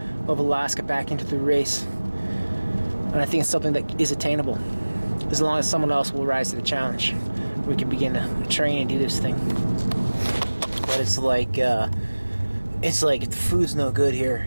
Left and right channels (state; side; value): inverted; both; correlation -1.00